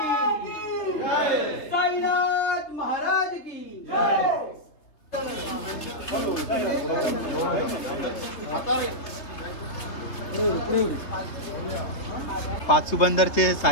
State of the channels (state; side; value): late; right; 3.5 ms